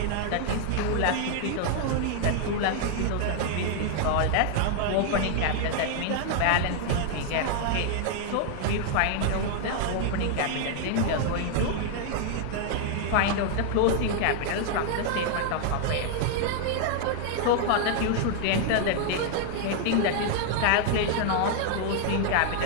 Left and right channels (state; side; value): different; both; correlation 0.00